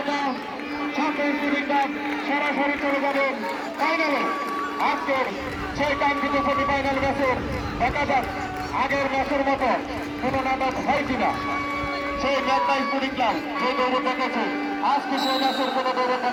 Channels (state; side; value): identical; both; correlation 1.00